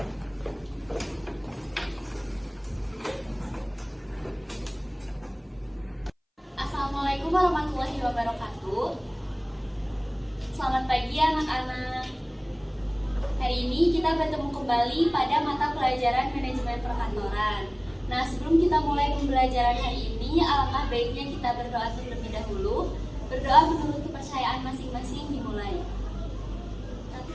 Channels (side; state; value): both; identical; correlation 1.00